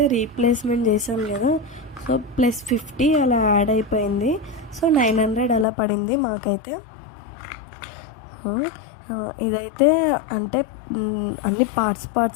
రీప్లేస్మెంట్ చేసాం కదా, సో +50 అలా యాడ్ అయిపోయింది. సో 900 అలా పడింది మాకైతే. ఇదైతే అంటే అన్ని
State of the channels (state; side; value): drops out; right; at 5.7 s